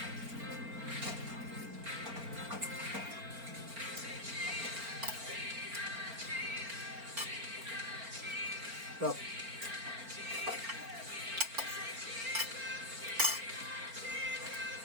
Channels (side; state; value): left; late; 4.4 ms